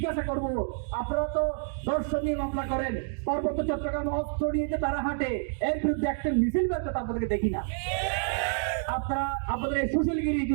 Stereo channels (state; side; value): silent; left; digital silence